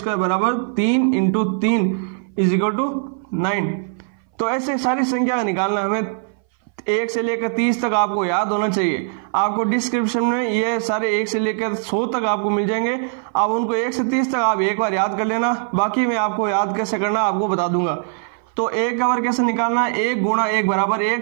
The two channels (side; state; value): left; silent; 60 dB below the other